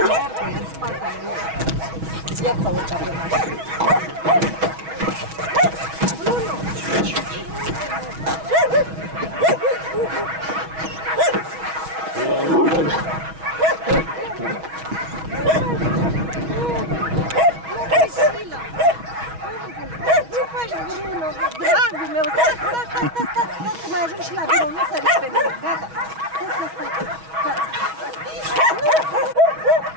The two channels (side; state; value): left; late; 6.3 ms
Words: în spatele lui. Ia să urca pe mașină. Bruno! Ce faci, Bruno? Dragul meu, stai, că mai ajung și la birou, nu săriți pe mine, gata.